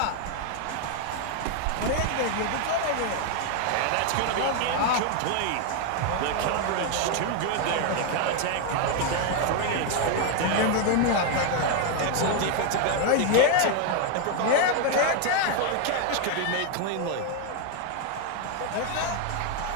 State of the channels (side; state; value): both; different; correlation 0.01